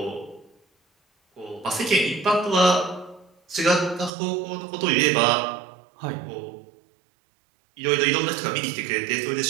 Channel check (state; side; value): drops out; left; at 4.1 s